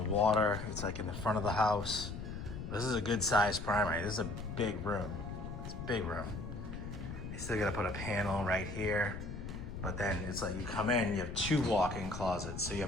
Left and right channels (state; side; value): noise; left; rumble, 7 dB below the sound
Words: water. It's like in the front of the house. This is a good sized primary. This is a big room. It's a big room. You still gotta put a panel right here, but then it's like you come in, you have 2 walk-in closets. So you